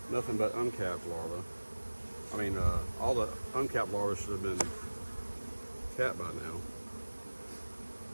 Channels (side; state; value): both; inverted; correlation -1.00